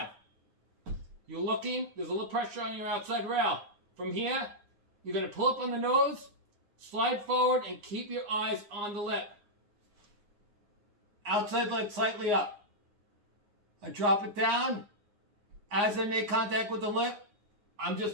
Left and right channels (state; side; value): late; left; 9.7 ms